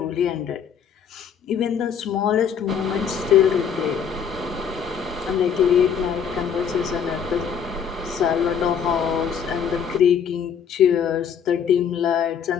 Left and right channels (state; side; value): quieter; right; 7.5 dB